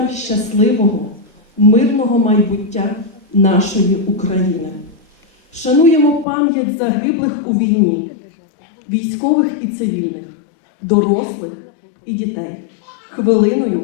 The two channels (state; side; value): drops out; right; at 6.2 s